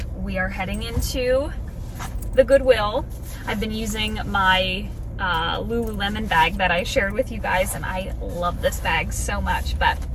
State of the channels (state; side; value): identical; both; correlation 1.00